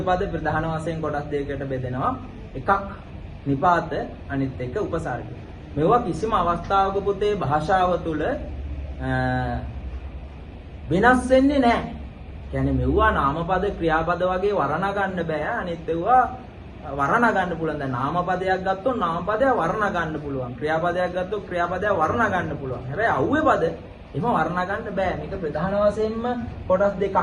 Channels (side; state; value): both; identical; correlation 1.00